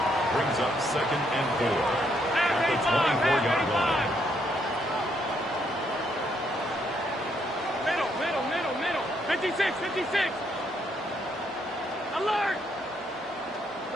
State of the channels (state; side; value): normal; both; correlation 0.73